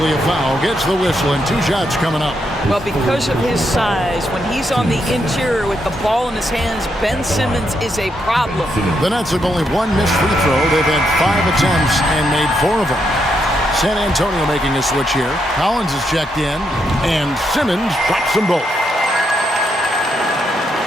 a foul. Gets the whistle and 2 shots coming up. Well, because of his size, when he's on the interior with the ball in his hands, Ben Simmons is a problem. The Nets have only 1 missed free throw. They've had 5 attempts and made 4 of them. San Antonio making a switch here. Collins is checked in, and Simmons drops them both.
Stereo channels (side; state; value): both; normal; correlation 0.79